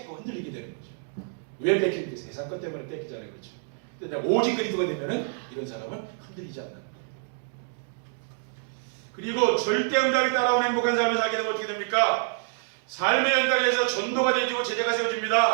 흔들리게 되는 거죠. 왜 뺏기는 게 세상 것 때문에 뺏기잖아요. 그렇죠? 근데 내가 오직 그리스도가 되면은 이런 사람은 흔들리지 않는 거예요. 그리고 절대응답이 따라오는 행복한 삶을 살게 되면 어떻게 됩니까? 삶의 현장에서 전도가 되어지고 제자가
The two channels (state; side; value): silent; left; 60 dB below the other